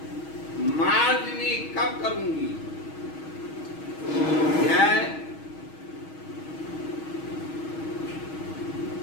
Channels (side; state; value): right; late; 6.3 ms